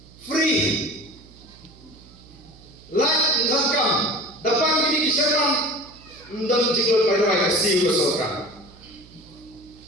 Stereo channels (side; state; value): right; noise; hum, 24 dB below the sound